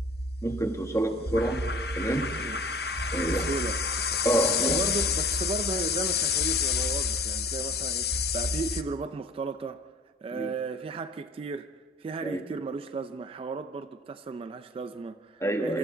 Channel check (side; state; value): both; normal; correlation 0.47